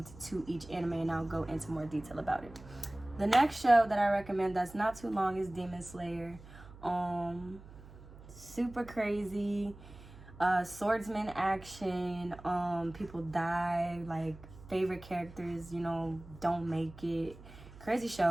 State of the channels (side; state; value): right; noise; hum, 18 dB below the sound